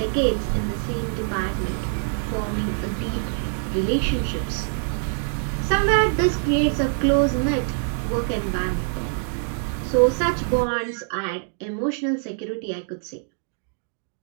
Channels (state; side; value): silent; left; 62 dB below the other